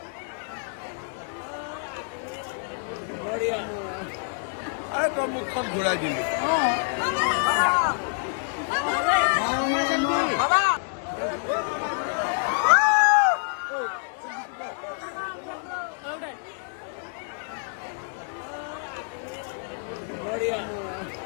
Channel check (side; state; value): right; silent; 57 dB below the other